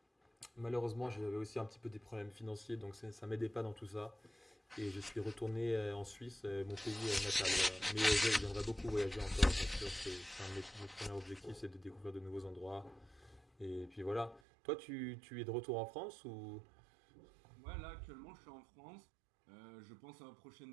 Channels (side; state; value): left; drops out; at 14.4 s